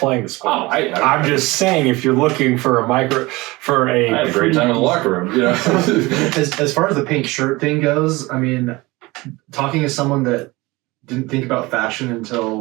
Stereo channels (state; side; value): quieter; left; 22.0 dB